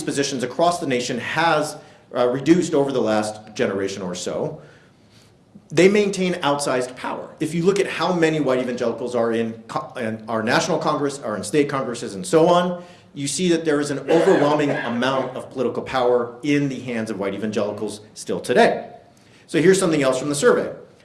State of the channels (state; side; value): identical; both; correlation 1.00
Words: positions across the nation has reduced over the last generation or so, they maintain outsized power. If you look at how many white evangelicals are in our national Congress, are in state Congresses, and so on, you see that there is an overwhelming amount of political power in the hands of white evangelicals still today. So here's something else from the survey.